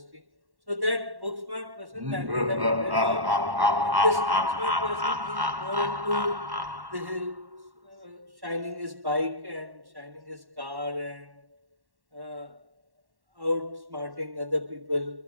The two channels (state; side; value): late; left; 1.1 ms